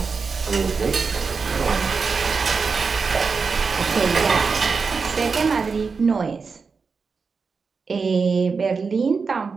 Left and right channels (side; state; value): left; quieter; 5.0 dB